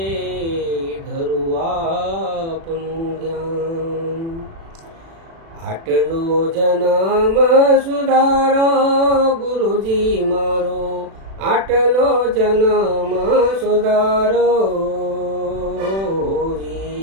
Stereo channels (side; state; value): left; late; 36 ms